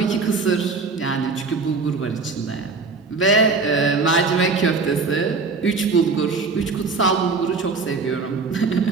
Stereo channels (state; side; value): quieter; left; 4.3 dB